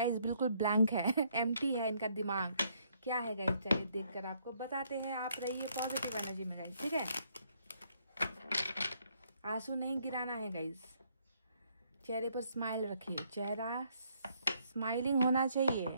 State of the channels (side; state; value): both; inverted; correlation -0.69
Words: बिल्कुल ब्लैंक है, एम्प्टी है इनका दिमाग। क्या है गाइस, चलिए देखकर आपको बताते हैं। आप रहिए पॉजिटिव एनर्जी में गाइस, ठीक है। आंसू नहीं गिराना है गाइस, चेहरे पर स्माइल रखिए, चेहरा स्माइलिंग होना चाहिए